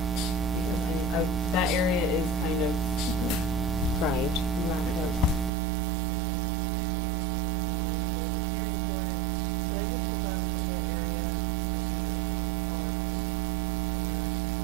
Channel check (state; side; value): drops out; left; at 5.5 s